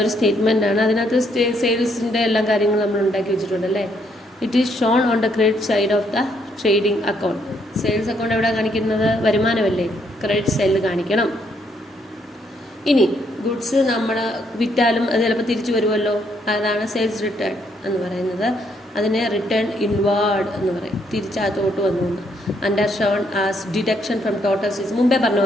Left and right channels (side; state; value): both; normal; correlation 0.72